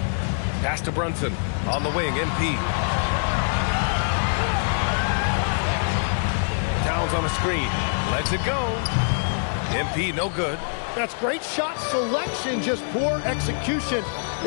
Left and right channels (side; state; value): right; silent; digital silence